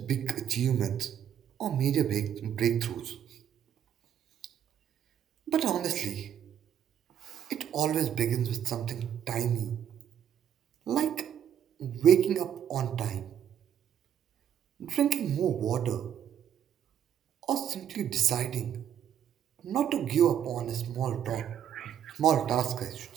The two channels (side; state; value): left; quieter; 9.5 dB